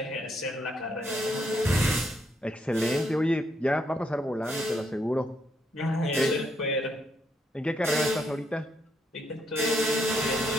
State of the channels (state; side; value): normal; both; correlation 0.75